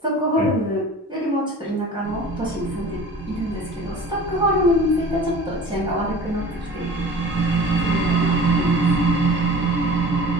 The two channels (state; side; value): normal; both; correlation 0.41